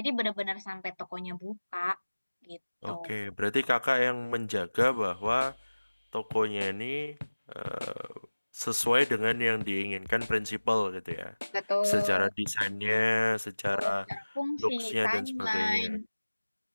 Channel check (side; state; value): both; inverted; correlation -1.00